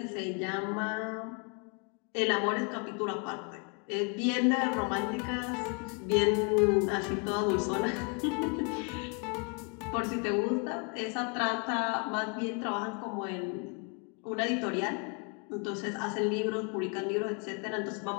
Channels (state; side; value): quieter; right; 35.6 dB